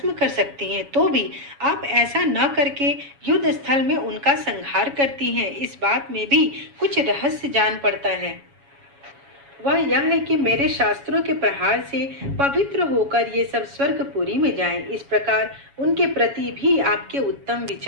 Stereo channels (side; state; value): left; late; 7.2 ms